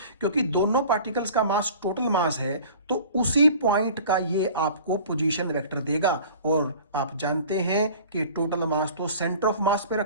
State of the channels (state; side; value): inverted; both; correlation -0.44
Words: क्योंकि दोनों पार्टिकल्स का मास टोटल मास है तो उसी पॉइंट का ये आपको पोजीशन वेक्टर देगा। और आप जानते हैं कि टोटल मास तो सेंटर ऑफ मास पे